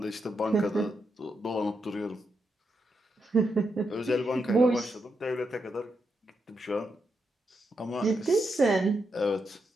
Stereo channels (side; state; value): both; normal; correlation 0.83